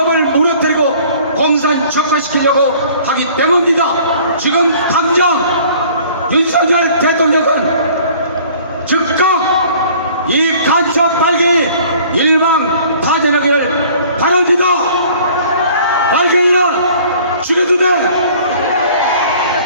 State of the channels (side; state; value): both; inverted; correlation -0.52